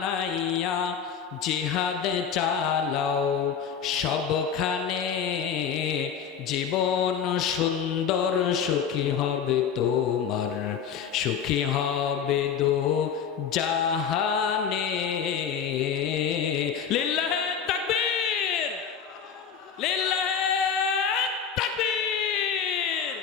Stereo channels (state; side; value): quieter; right; 7.4 dB